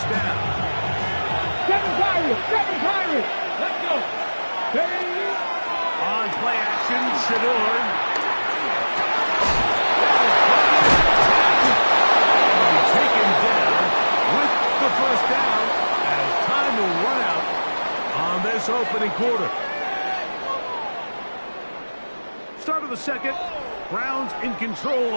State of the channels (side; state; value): both; inverted; correlation -1.00